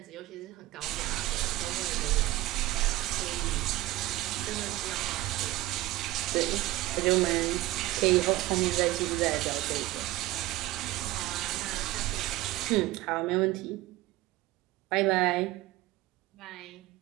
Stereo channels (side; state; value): left; quieter; 17.7 dB